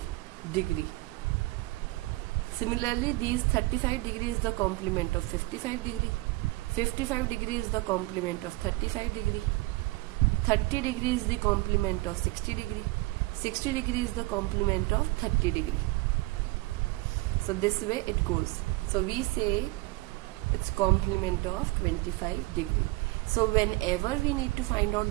degree. Similarly, these 35 degree is the complement of 55 degree. 55 degree is the complement of 35 degree. 30 degree is the complement of 60 degree. 60 degree is the complement of 30 degree. So this way it goes. So we say it's complement of 25 degree. So whenever we need to find out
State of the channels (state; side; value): quieter; left; 22.3 dB